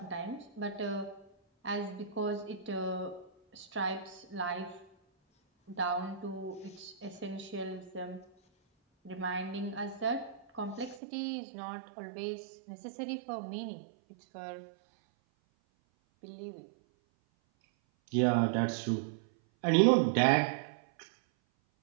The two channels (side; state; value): left; drops out; at 11.0 s